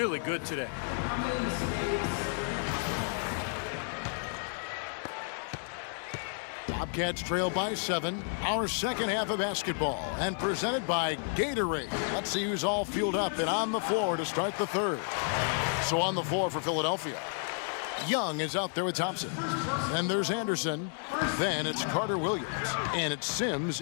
good today. Bobcats trail by 7. Our second half of basketball, and presented by Gatorade. Let's see who's all fueled up and on the floor to start the third. So on the floor for Philadelphia, Young is out there with Thompson. Then there's Anderson. Then it's Carter Williams. And it's Sims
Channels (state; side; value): silent; right; 57 dB below the other